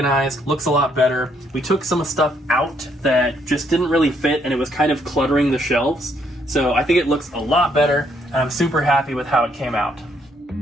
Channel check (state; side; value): normal; both; correlation 0.71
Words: looks a lot better. We took some stuff out that just didn't really fit, and it was kind of cluttering the shelves. So I think it looks a lot better, and I'm super happy with how it came out.